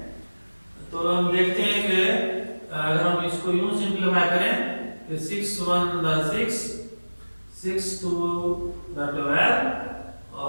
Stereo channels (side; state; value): both; inverted; correlation -1.00